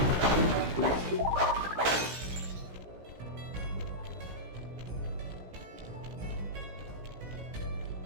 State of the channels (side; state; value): left; late; 16 ms